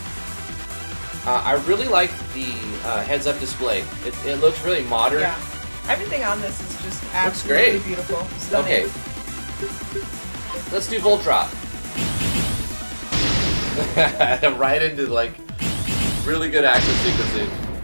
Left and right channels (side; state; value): both; inverted; correlation -1.00